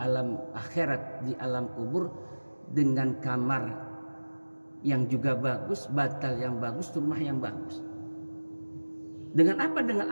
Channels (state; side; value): inverted; both; correlation -1.00